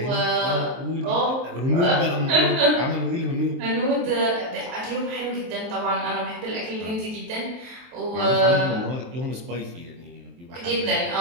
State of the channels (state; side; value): late; left; 23 ms